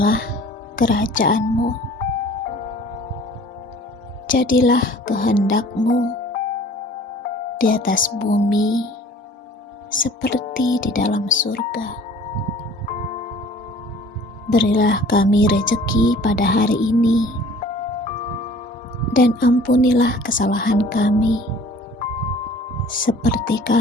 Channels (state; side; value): normal; both; correlation 0.49